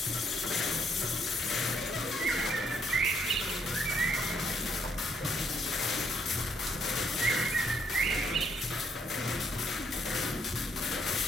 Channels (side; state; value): both; normal; correlation 0.72